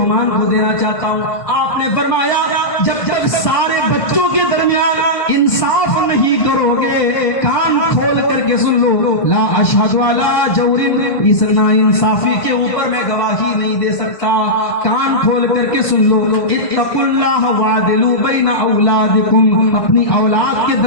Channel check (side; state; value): right; late; 1.6 ms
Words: کو دینا چاہتا ہوں۔ آپ نے فرمایا جب تک سارے بچوں کے درمیان انصاف نہیں کرو گے، کان کھول کر کے سن لو، لا اشہد علی جور، اس نا انصافی کے اوپر میں گواہی نہیں دے سکتا۔ کان کھول کر کے سن لو، اتقوا اللہ وعدلوا بین اولادکم، اپنی اولاد کے